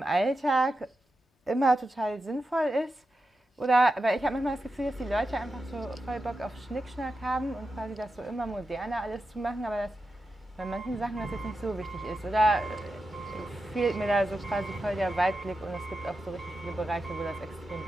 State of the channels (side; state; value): both; normal; correlation 0.90